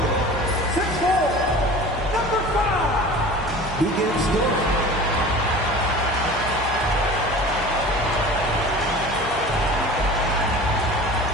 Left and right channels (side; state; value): both; normal; correlation 0.39